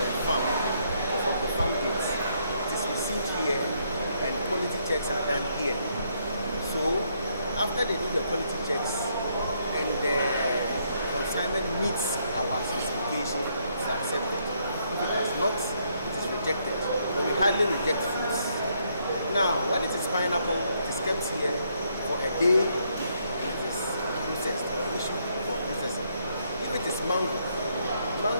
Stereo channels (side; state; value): both; inverted; correlation -0.73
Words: farm gates, it is received here and quality checks are done here. So after they do the quality checks and the consignment meets our specification, it is accepted. If it does not, it is rejected. But we hardly reject foods. Now, when it is pineapple, it is kept here for a day. Or issue for processing. If it is mango